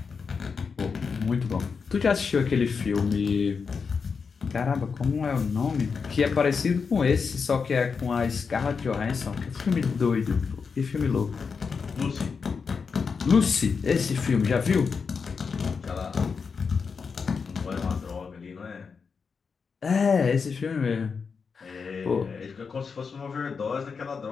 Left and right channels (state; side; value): quieter; right; 5.5 dB